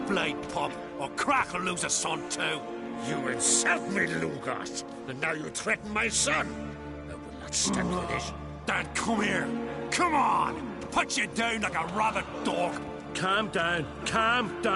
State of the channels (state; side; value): identical; both; correlation 1.00